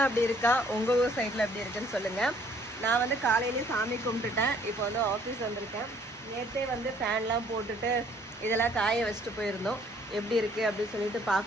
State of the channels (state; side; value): normal; both; correlation 0.61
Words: அப்படி இருக்கா, உங்கள் ஊர் சைடில் எப்படி இருக்குன்னு சொல்லுங்கள். நான் வந்து காலையிலேயே சாமி கும்பிட்டுட்டேன். இப்போ வந்து ஆஃபீஸ் வந்திருக்கேன். நேற்றே வந்து ஃபேன்லாம் போட்டுட்டு இதெல்லாம் காய வச்சுட்டு போயிருந்தோம். எப்படி இருக்குது அப்படின்னு சொல்லிட்டு